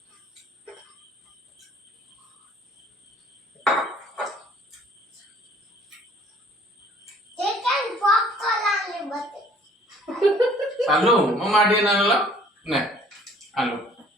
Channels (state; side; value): normal; both; correlation 0.55